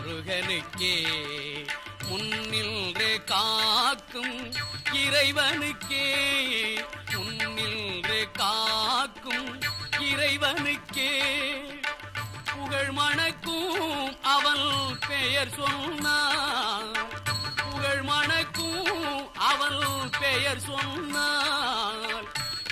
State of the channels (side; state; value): both; identical; correlation 1.00